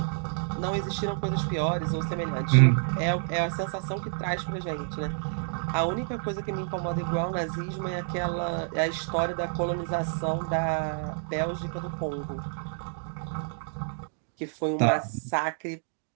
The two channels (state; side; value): silent; left; digital silence